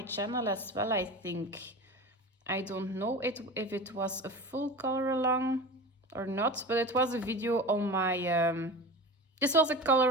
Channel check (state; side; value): normal; both; correlation 0.31